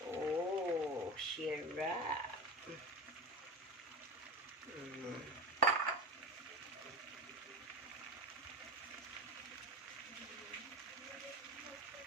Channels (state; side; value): normal; both; correlation 0.27